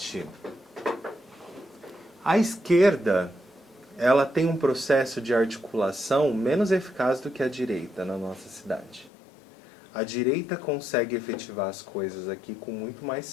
A esquerda, ela tem um processo de articulação menos eficaz do que a direita na nossa cidade. A direita consegue efetivar as coisas aqui com muito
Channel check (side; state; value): right; drops out; at 9.1 s